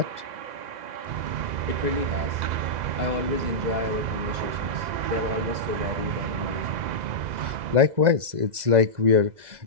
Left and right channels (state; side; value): late; left; 2.0 ms